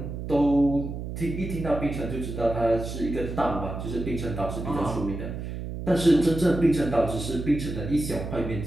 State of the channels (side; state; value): right; noise; hum, 7 dB below the sound